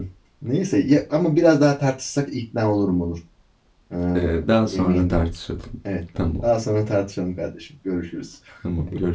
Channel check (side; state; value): both; identical; correlation 1.00